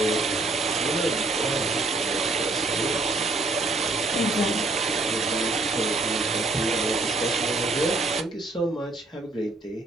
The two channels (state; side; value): quieter; left; 3.2 dB